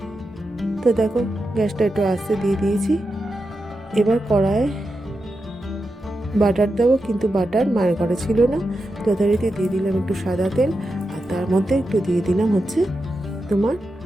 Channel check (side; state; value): both; normal; correlation 0.89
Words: তো দেখো গ্যাসটা একটু আস্তে দিয়ে দিয়েছি। এবার কড়ায় বাটার দেবো, কিন্তু বাটার মায়ের ঘরে ছিল না, যথারীতি দিয়ে দিলাম একটু সাদা তেল, আর তার মধ্যে একটু দিয়ে দিলাম হচ্ছে তোমার